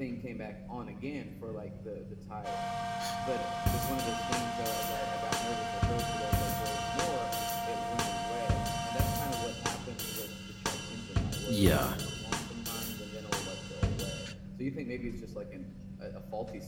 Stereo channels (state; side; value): identical; both; correlation 1.00